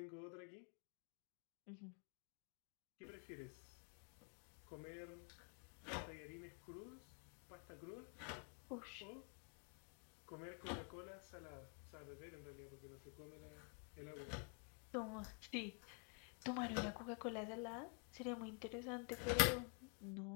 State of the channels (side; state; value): right; quieter; 39.4 dB